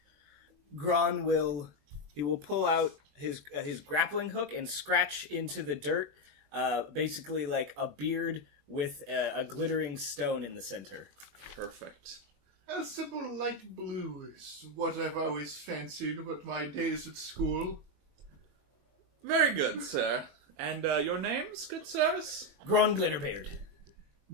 Gron will pull out his grappling hook and scratch into the dirt, basically like a beard with a glittering stone in the center. Perfect. A simple light blue is what I've always fancied with my days at school. Very good, sir. And your names, good sirs? Gron Glitterbeard.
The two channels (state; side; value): late; left; 21 ms